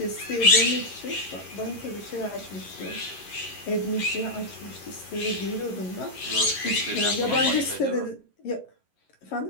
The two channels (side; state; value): right; late; 11 ms